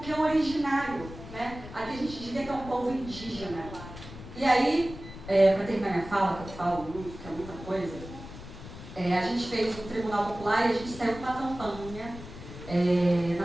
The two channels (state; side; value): noise; left; rumble, 13 dB below the sound